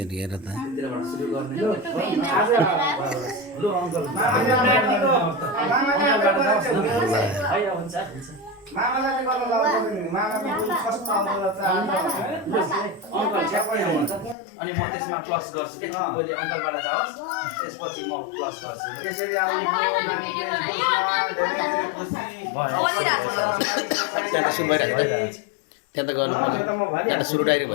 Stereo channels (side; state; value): right; drops out; at 14.4 s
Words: त मामालाई गर्न लाउँदैन मामाको फर्स्ट आउँदा अनि म त्यसमा प्लस गर्छु कि पहिले अङ्कलबाट जाओस् त्यसपछि म प्लस गर्छु त्यसरी आउने त्यहाँ त गर्नु त्यहाँ सुरु डाइरेक्ट